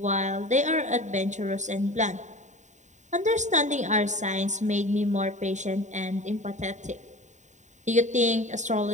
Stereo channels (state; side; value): late; left; 0.34 ms